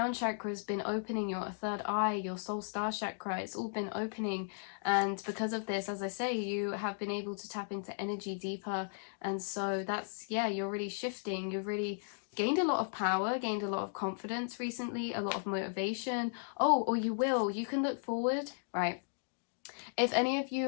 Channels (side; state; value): right; silent; digital silence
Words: chakra has been opening, your third eye, your soul star chakra, it's all been opening. And because of this, as I say, you have been able to tap into energy deeper. And so that's, yeah, you're really shifting, you've really gained a lot of power, gained a lot of confidence recently, a lot of motivation. Oh, or you can look forward, right? If any of